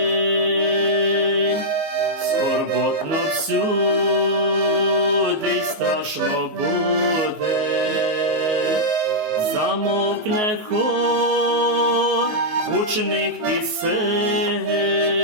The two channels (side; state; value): left; late; 19 ms